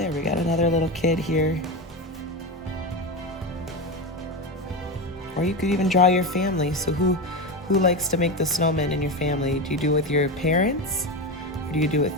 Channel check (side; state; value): both; normal; correlation 0.18